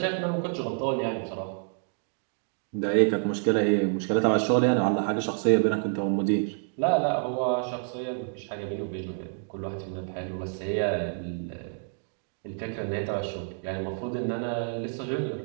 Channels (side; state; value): left; silent; 59 dB below the other